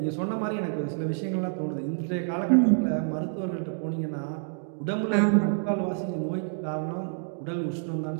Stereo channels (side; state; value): left; silent; digital silence